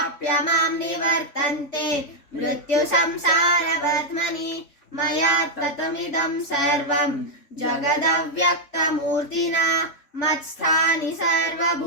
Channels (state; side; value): late; right; 3.5 ms